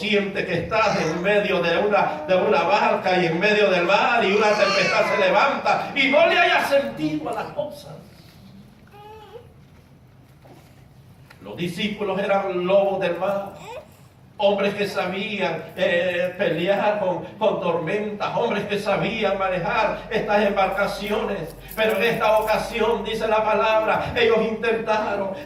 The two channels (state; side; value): identical; both; correlation 1.00